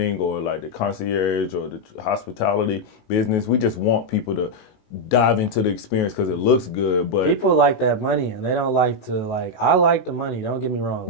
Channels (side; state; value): right; late; 19 ms